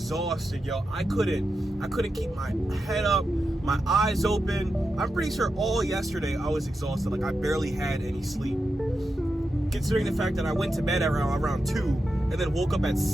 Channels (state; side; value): normal; both; correlation 0.88